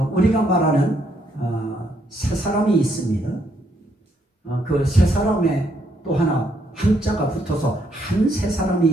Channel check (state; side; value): normal; both; correlation 0.73